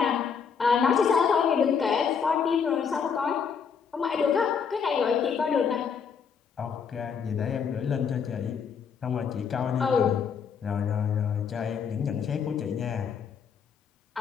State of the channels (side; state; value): right; quieter; 6.6 dB